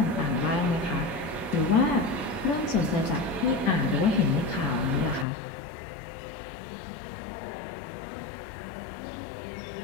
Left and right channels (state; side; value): drops out; right; at 5.2 s